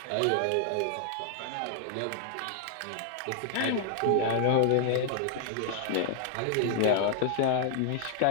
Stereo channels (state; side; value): different; both; correlation 0.00